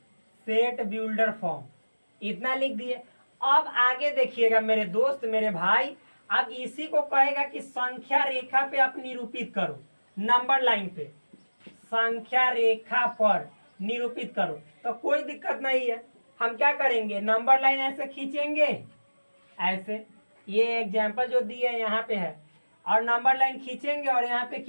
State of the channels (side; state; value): both; inverted; correlation -1.00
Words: सेट बिल्डर फॉर्म। इतना लिख दिए। अब आगे देखिएगा मेरे दोस्त, मेरे भाई, अब इसी को कहेगा कि संख्या रेखा पे आप निरूपित करो, नंबर लाइन पे संख्या रेखा पर निरूपित करो। तो कोई दिक्कत नहीं है, हम क्या करेंगे, नंबर लाइन ऐसे खींचेंगे, ऐसे ये एग्जाम्पल जो दिए यहाँ पे है, और नंबर लाइन खींचेंगे और यहाँ पे